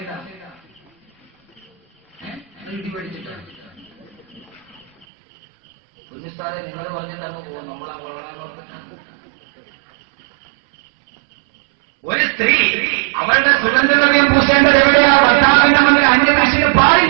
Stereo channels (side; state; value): left; drops out; at 5.1 s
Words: ഇടി പഠിച്ചിട്ടാണ് കുഞ്ഞുസ്ഥാനെ നിങ്ങൾ പറഞ്ഞിട്ടാണ് പോകും. നമ്മളാ വളരാൻ ഒരു സ്ത്രീ അവളുടെ സുഗന്ധദ്രവ്യം പൂശേണ്ടത് എവിടെയാ? ഭർത്താവിന്റെ മുന്നിൽ അന്യനാശിന്